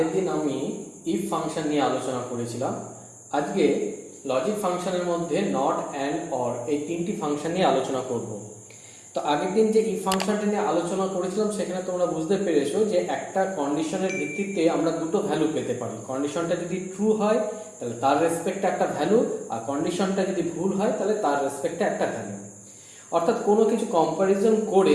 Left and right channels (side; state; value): both; identical; correlation 1.00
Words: দিন আমি ইফ ফাংশন নিয়ে আলোচনা করেছিলাম। আজকে লজিক ফাংশনের মধ্যে নট, অ্যান্ড, অর এই তিনটি ফাংশন নিয়ে আলোচনা করব। তো আগের দিন যে ইফ ফাংশনটা নিয়ে আলোচনা করেছিলাম সেখানে তোমরা বুঝতে পেরেছো যে একটা কন্ডিশনের ভিত্তিতে আমরা দুটো ভ্যালু পেতে পারি। কন্ডিশনটা যদি ট্রু হয় তাহলে তার রেসপেক্টে একটা ভ্যালু, আর কন্ডিশনটা যদি ভুল হয় তাহলে তার রেসপেক্টে একটা ভ্যালু। অর্থাৎ কোনো কিছু কম্প্যারিজন